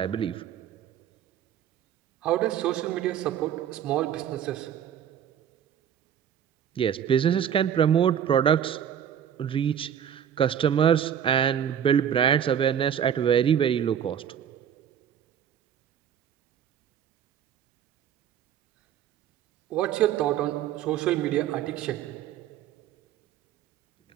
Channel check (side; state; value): left; quieter; 9.2 dB